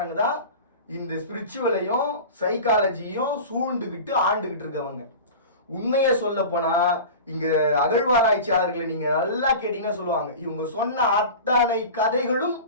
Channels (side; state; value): both; inverted; correlation -0.33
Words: தான் இந்த ஸ்பிரிச்சுவலையும் சைக்காலஜியும் சூழ்ந்துகிட்டு ஆண்டுகிட்டு இருக்கவங்க. உண்மையை சொல்ல போனா இங்க அகழ்வாராய்ச்சியாளர்களை நீங்க நல்லா கேட்டீங்கன்னா சொல்லுவாங்க, இவங்க சொன்ன அத்தனை கதைகளும்